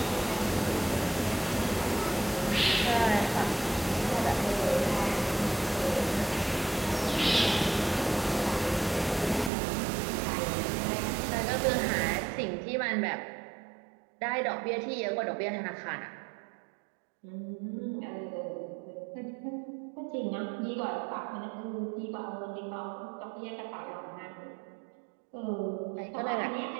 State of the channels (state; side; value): drops out; left; at 9.5 s